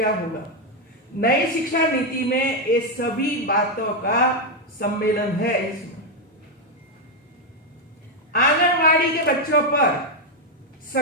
होगा। नई शिक्षा नीति में ये सभी बातों का सम्मेलन है। इसमें आंगनवाड़ी के बच्चों पर,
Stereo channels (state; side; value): normal; both; correlation 0.03